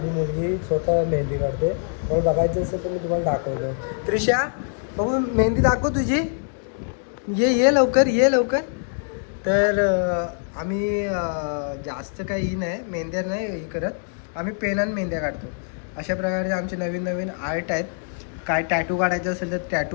मुलगी स्वतः मेहंदी काढते. मला बघायचं असेल तर मी तुम्हाला दाखवतो. त्रिशा, बघू मेहंदी दाखव तुझी. ये लवकर, ये लवकर. तर आम्ही जास्त काही ही नाही, मेहंद्या नाही हे करत. आम्ही पेनानं मेहंद्या काढतो. अशा प्रकारे आमचे नवीन नवीन आर्ट आहेत. काय टॅटू काढायचं असेल तर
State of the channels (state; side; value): silent; right; 63 dB below the other